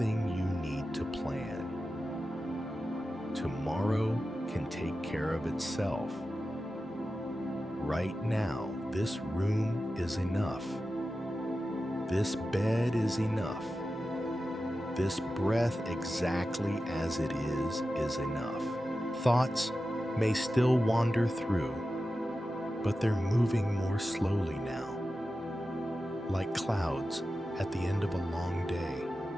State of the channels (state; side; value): normal; both; correlation 0.93